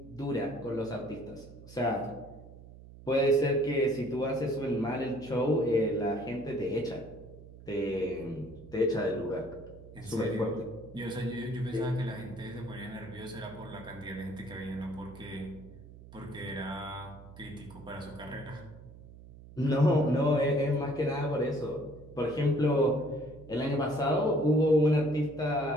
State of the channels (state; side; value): noise; right; hum, 18 dB below the sound